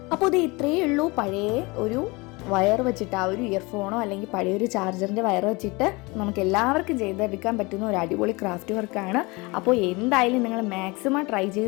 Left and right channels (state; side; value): quieter; right; 25.3 dB